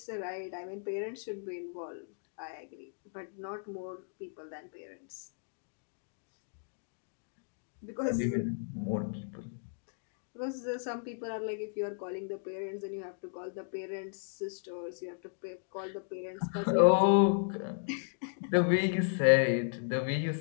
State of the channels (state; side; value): silent; right; digital silence